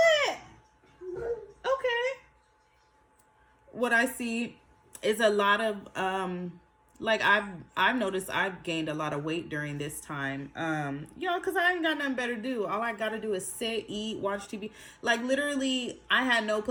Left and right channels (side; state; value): both; identical; correlation 1.00